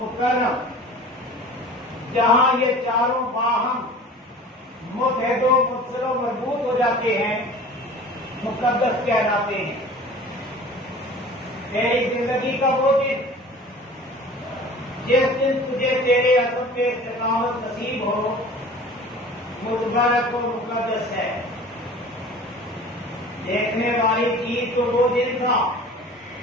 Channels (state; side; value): normal; both; correlation 0.43